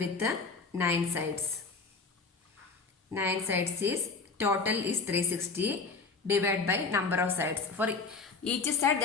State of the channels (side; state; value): right; quieter; 4.3 dB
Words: 9 sides. 9 sides is total is 360 divided by number of sides. For each side